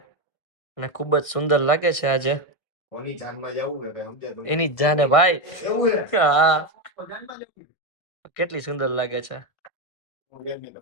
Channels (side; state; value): right; late; 1.6 ms